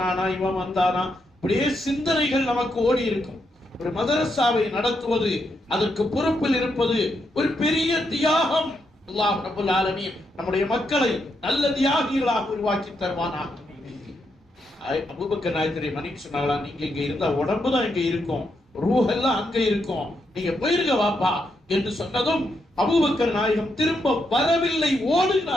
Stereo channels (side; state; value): both; normal; correlation 0.81